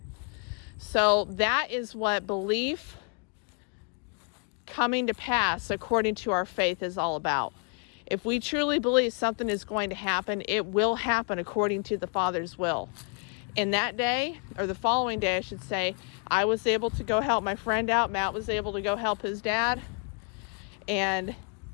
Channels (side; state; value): right; quieter; 36.7 dB